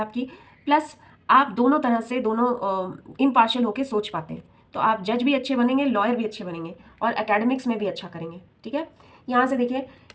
प्लस आप दोनों तरह से दोनों इम्पार्शियल होके सोच पाते हैं। तो आप जज भी अच्छे बनेंगे, लॉयर भी अच्छे बनेंगे और एकेडमिक्स में भी अच्छा करेंगे, ठीक है। यहाँ से देखिए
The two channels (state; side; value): identical; both; correlation 1.00